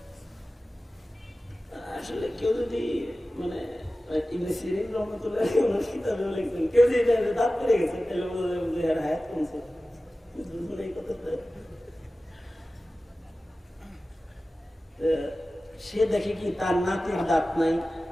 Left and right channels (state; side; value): normal; both; correlation 0.96